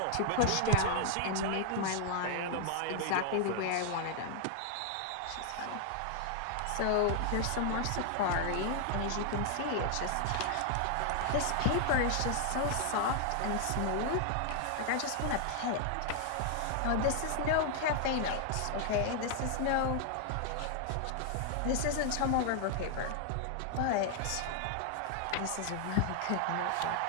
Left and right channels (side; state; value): both; different; correlation 0.00